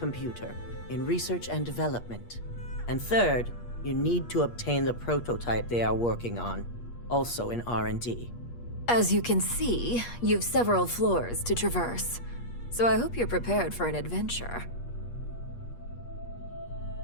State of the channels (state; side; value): late; right; 8.4 ms